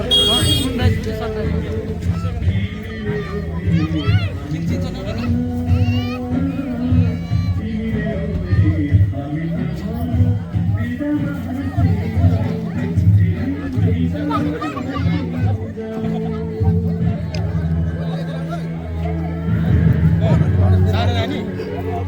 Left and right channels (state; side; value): identical; both; correlation 1.00